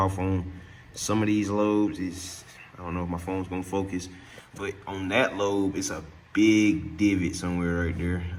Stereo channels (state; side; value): identical; both; correlation 1.00